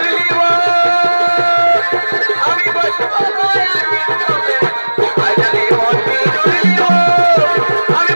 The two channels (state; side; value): inverted; both; correlation -1.00